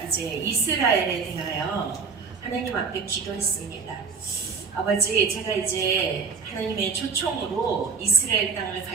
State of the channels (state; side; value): quieter; left; 5.2 dB